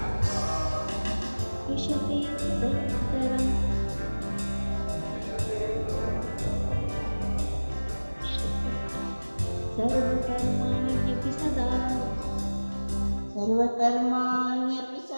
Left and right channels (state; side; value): inverted; both; correlation -1.00